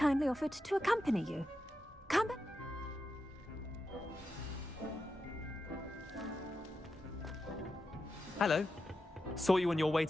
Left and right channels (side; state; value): both; normal; correlation 0.88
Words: offered to accompany you. Come. Hello. Saw you on your way